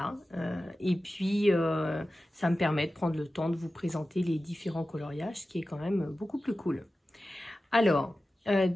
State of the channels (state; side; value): normal; both; correlation 0.94